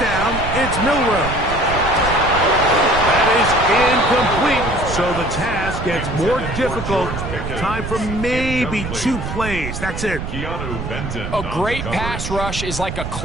down, it's Milroe. That is incomplete, so the task gets more difficult. Time for maybe 2 plays. That's it. A great pass rush is like a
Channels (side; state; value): right; noise; rumble, 6 dB below the sound